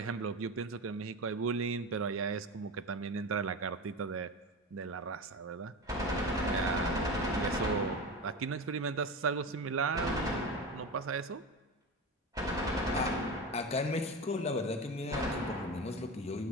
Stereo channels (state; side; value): normal; both; correlation 0.25